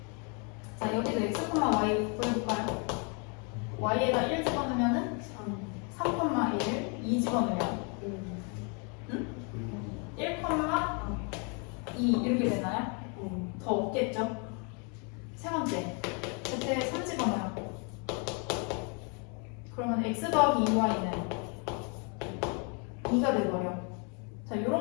자, 여기도 x, y 보여볼까요? y에다 1 집어넣으면은 3,1 2 집어넣으면 1, 2 이렇게 되나요? 더 없겠죠? 세 번째, Z에 3 집어넣어요. 그러면 X 더하기 2Y는 2가 돼버려. 자,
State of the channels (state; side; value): quieter; right; 35.9 dB